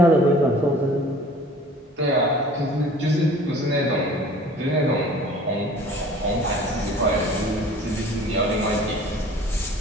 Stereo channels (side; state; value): both; normal; correlation 0.48